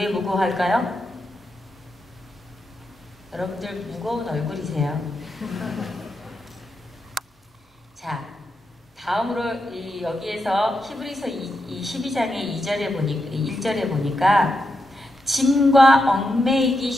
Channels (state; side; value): normal; both; correlation 0.85